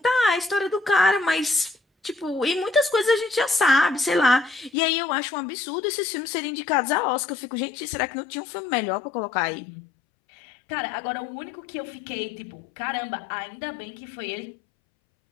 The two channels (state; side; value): drops out; right; at 4.7 s